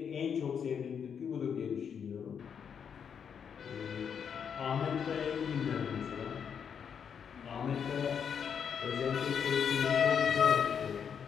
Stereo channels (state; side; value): quieter; right; 7.4 dB